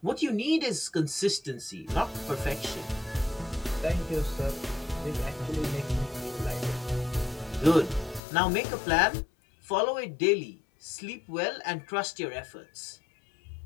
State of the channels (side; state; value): right; drops out; at 8.2 s